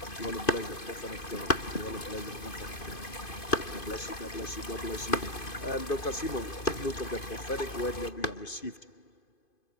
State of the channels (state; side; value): late; right; 2.5 ms